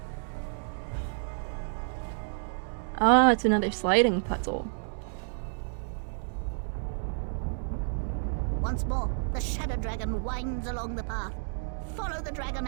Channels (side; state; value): left; silent; digital silence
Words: Ah, it's another sliding puzzle. Once more, the shadow dragon winds along the path. Follow the dragon,